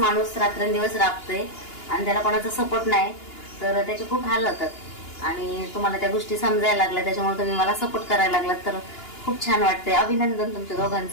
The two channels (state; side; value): late; right; 2.9 ms